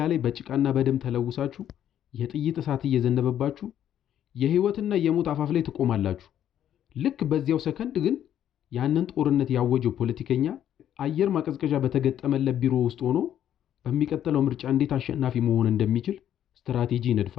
ላይ በጭቃና በደም ተለውሳችሁ የጥይት እሳት እየዘነበባችሁ የህይወትና የሞት አፋፍ ላይ ትቆማላችሁ። ልክ በዚያው ሰከንድ ግን ያንን ጦርነት ያወጀው ፖለቲከኛ አየር ማቀዝቀዣ በተገጠመለት ቢሮ ውስጥ ሆኖ በሚቀጥለው ምርጫ እንዴት አሸናፊ መሆን እንደሚችል ስትራቴጂ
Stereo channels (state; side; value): quieter; right; 10.5 dB